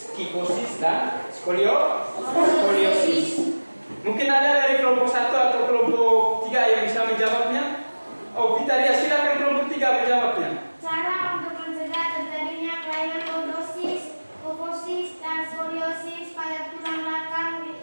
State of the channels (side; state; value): both; inverted; correlation -1.00